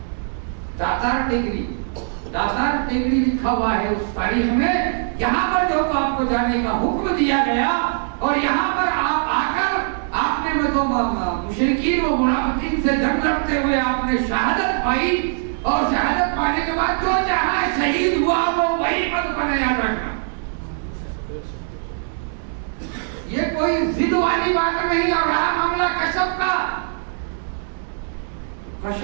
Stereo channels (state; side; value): silent; left; digital silence